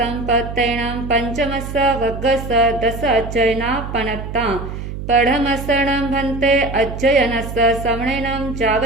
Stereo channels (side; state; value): right; noise; hum, 8 dB below the sound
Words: पंचमस्स वग्गस 10 अध्ययना पनत्ता पढ़मसणं भन्ते अध्ययनस्स समणेनं जाव